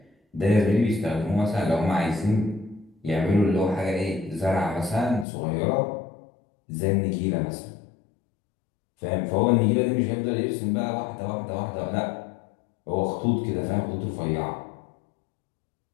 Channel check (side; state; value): right; drops out; at 5.2 s